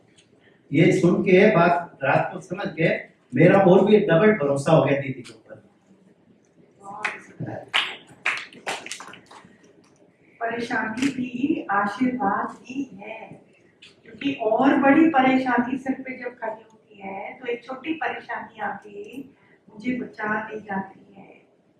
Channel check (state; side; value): identical; both; correlation 1.00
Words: ये सुन के बात रात को समझ के मेरा और भी डबल भरोसा हो गया दीदी के ऊपर। परेशानी भी आशीर्वाद ही है, क्योंकि और बड़ी परेशानी सिर पे जब खड़ी होती है तो एक छोटी परेशानी आके मुझे बचा ले जाती है।